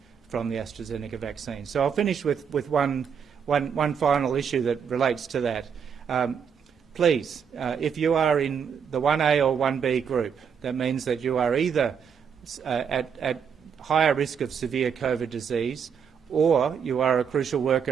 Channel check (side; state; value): left; quieter; 7.0 dB